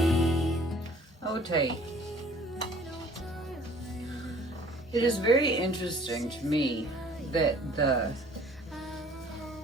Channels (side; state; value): both; normal; correlation 0.54